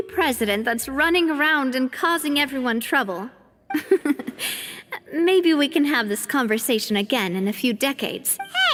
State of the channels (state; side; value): identical; both; correlation 1.00